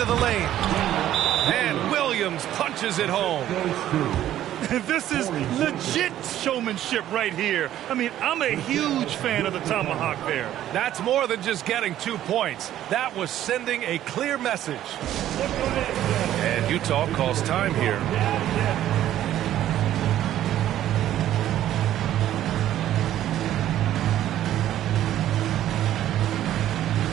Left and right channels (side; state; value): left; quieter; 12.4 dB